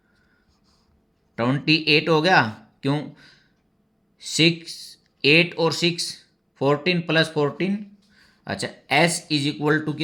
28 हो गया, क्यों 6 8 और 6 14 प्लस 14। अच्छा s इज इक्वल टू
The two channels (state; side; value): identical; both; correlation 1.00